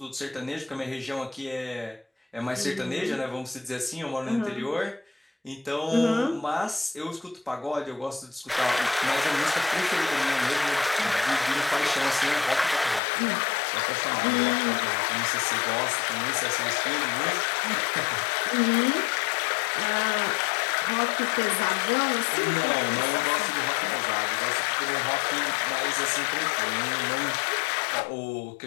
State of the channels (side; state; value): right; drops out; at 13.0 s